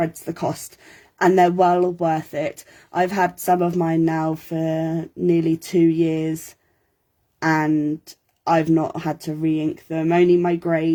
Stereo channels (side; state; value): both; identical; correlation 1.00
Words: the cost, and they're well worth it. I've had some of mine now for nearly 2 years and I've not had to re-ink them. Only my